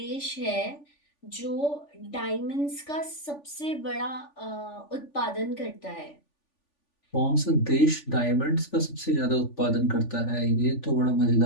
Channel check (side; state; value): right; late; 3.5 ms